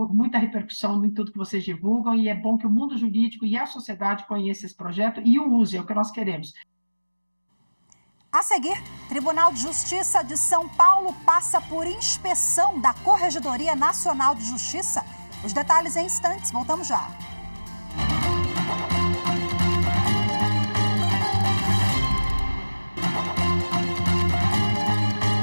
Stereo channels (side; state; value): both; inverted; correlation -1.00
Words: repercussão em tudo que vocês divulgam e é bom que o mundo jurídico e a sociedade conheçam esse projeto e o usem, é o que nós queremos. A seguir, Tribunal de Justiça de São Paulo passa por inspeção da Corregedoria Nacional de Justiça. Os detalhes em instantes, voltamos já.